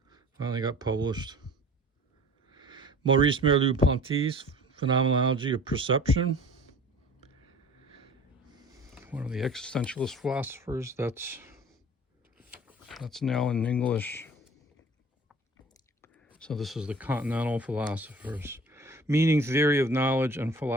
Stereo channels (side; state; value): both; normal; correlation 0.44